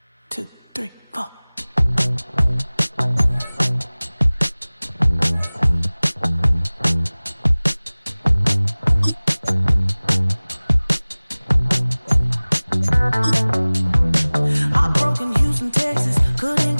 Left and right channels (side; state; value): both; inverted; correlation -1.00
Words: 2, 3, 4. I broke in Houston, Texas. Couldn't